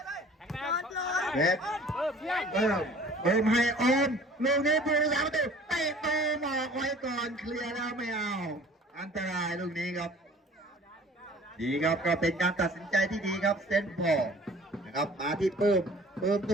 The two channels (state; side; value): normal; both; correlation 0.49